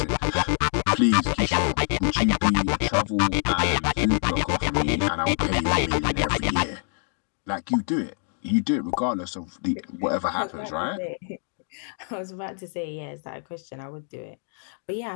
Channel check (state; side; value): silent; right; 61 dB below the other